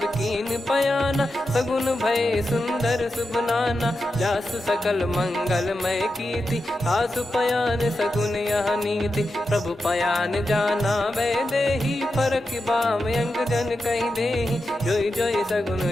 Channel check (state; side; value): normal; both; correlation 0.89